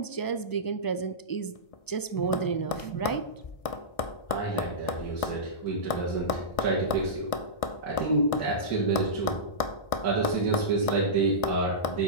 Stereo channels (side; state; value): right; late; 1.6 ms